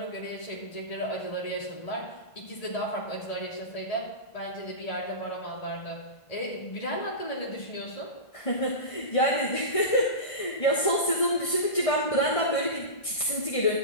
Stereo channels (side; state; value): right; late; 1.5 ms